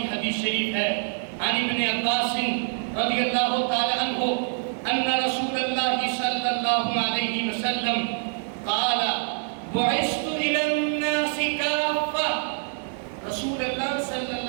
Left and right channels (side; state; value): left; silent; 61 dB below the other